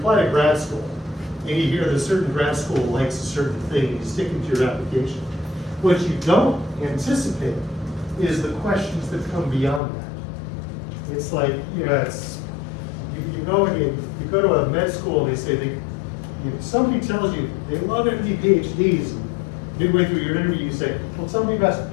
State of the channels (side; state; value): right; drops out; at 9.8 s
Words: to grad school, and you hear that a certain grad school likes a certain thing, and you stick it to your application. What you don't anticipate is the questions that come beyond that. It's like, you know, you go and you go to a med school and they say, somebody tells you they love MD PhDs, and midway through your interview you say, well, tell me about